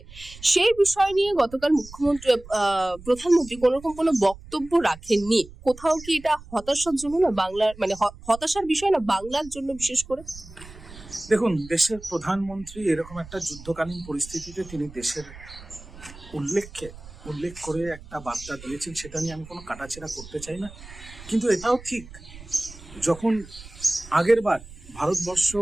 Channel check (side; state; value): right; noise; rumble, 18 dB below the sound